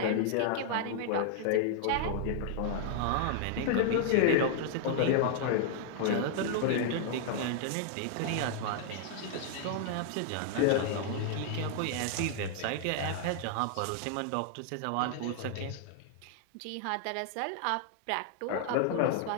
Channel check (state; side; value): different; both; correlation 0.00